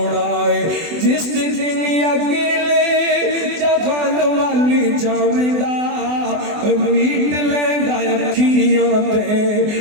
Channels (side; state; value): left; late; 24 ms